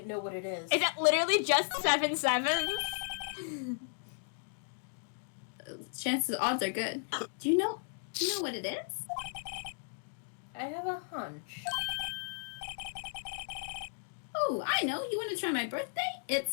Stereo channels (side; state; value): right; silent; digital silence